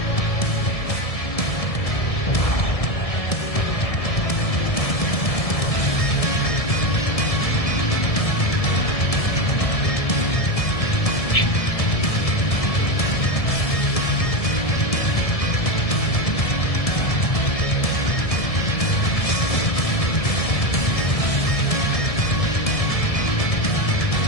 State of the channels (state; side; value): late; right; 1.7 ms